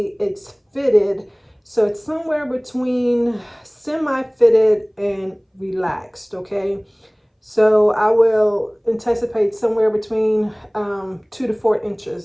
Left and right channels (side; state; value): both; identical; correlation 1.00